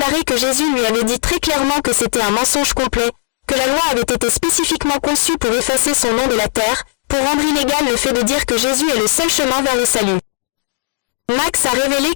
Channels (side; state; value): right; silent; digital silence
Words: que Jésus lui avait dit très clairement que c'était un mensonge complet, que la loi avait été spécifiquement conçue pour effacer son nom de la terre, pour rendre illégal le fait de dire que Jésus est le seul chemin vers le salut. Max a révélé